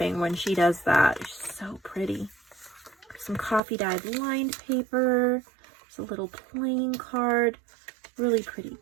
when she does that. It's so pretty. Some coffee dyed lined paper. There's a little playing card. Really pretty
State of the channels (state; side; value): drops out; left; at 3.6 s